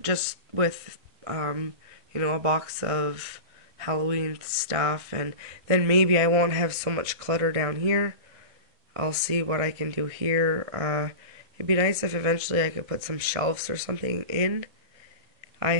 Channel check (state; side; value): late; left; 1.8 ms